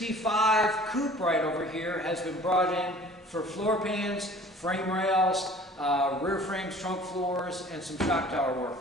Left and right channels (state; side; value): normal; both; correlation 0.48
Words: coupe right over here has been brought in for floor pans, frame rails, rear frames, trunk floors, and some shock tower work.